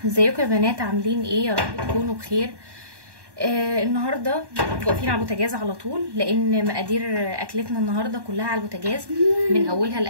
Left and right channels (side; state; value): left; late; 1.1 ms